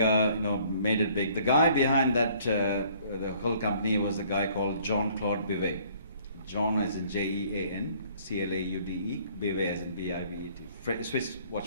made it big. The guy behind that, the whole company was a guy called Jean-Claude Bivet. John as in Jean, Claude, Bivet as in Bivet, Swiss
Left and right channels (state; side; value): inverted; both; correlation -0.58